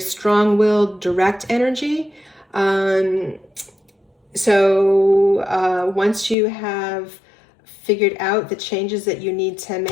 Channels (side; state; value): right; drops out; at 6.4 s